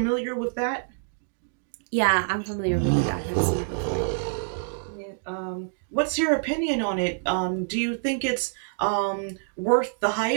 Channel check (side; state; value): left; silent; digital silence